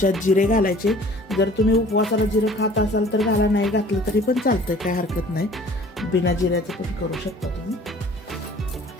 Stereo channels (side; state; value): both; normal; correlation 0.50